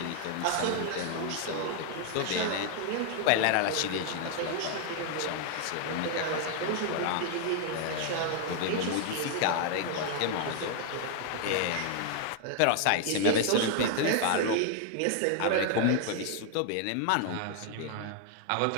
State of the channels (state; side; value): different; both; correlation 0.00